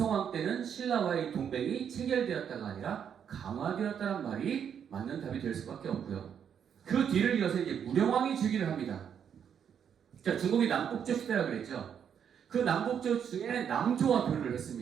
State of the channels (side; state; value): left; quieter; 8.1 dB